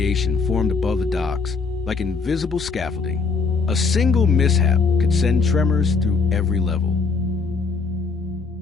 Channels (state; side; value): quieter; right; 4.6 dB